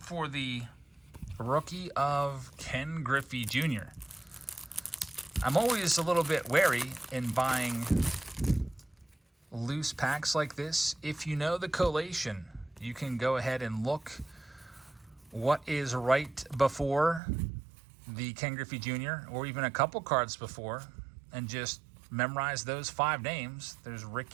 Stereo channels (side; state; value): left; drops out; at 17.2 s